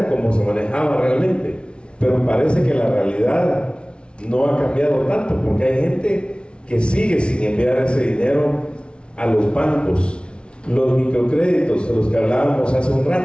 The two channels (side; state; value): right; late; 0.058 ms